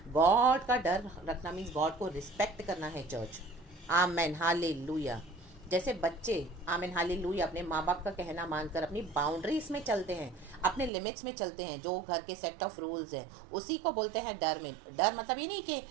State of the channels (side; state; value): left; drops out; at 10.9 s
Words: गॉड का डर रखना मीन्स गॉड को रिस्पेक्ट करना है चर्च। आमीन हालेलुया। जैसे बच्चे आमीन हालेलुया अपने माँ बाप का कहना मानकर अपनी बाउंड्रीज में चलते हैं, अपने लिमिट्स में चलते हैं, जो घर के सेट ऑफ रूल्स हैं, उसी को बोलते हैं डर। में डर मतलब ये नहीं कि